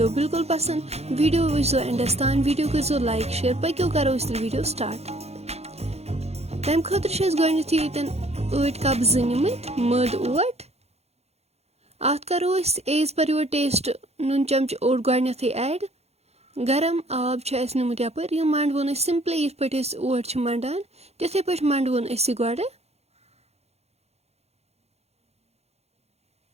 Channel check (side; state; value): left; late; 0.31 ms